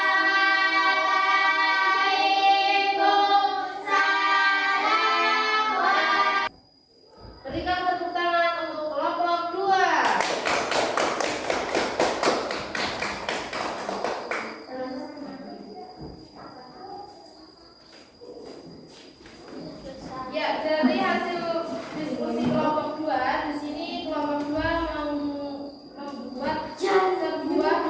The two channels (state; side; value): identical; both; correlation 1.00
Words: Berikan tepuk tangan untuk kelompok 2. Ya, dari hasil diskusi kelompok 2, di sini kelompok 2 membuat sebuah